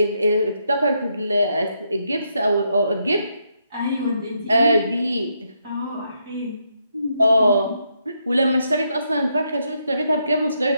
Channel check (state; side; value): inverted; both; correlation -0.78